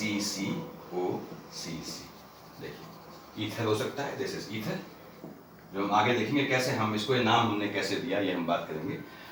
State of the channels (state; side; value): identical; both; correlation 1.00